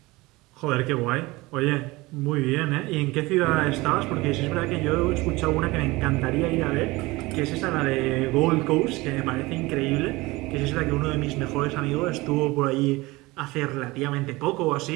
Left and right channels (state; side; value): quieter; left; 21.5 dB